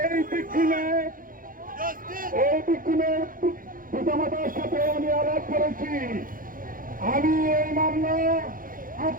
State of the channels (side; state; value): left; late; 0.40 ms